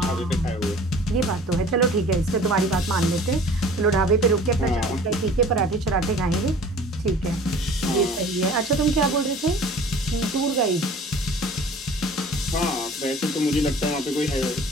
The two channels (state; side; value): normal; both; correlation 0.46